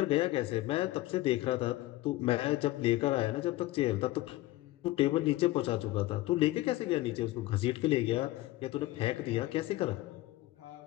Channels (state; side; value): quieter; right; 17.5 dB